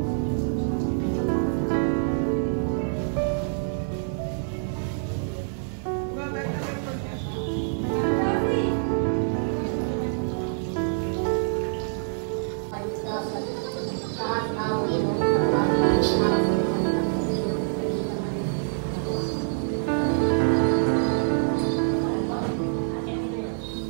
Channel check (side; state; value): left; silent; 56 dB below the other